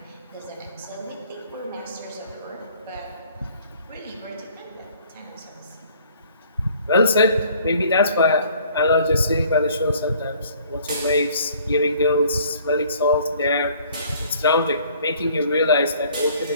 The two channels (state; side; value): inverted; both; correlation -0.57